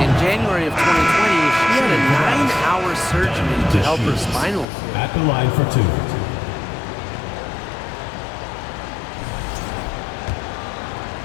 January of 2020, she had a 9-hour surgery to help her spinal cord. At the line for two.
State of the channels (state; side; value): drops out; right; at 4.7 s